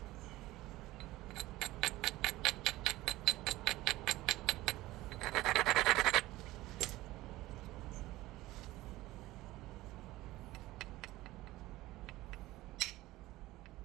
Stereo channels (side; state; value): left; quieter; 17.8 dB